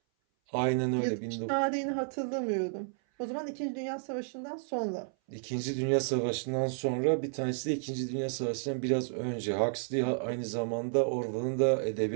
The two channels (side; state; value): left; silent; 57 dB below the other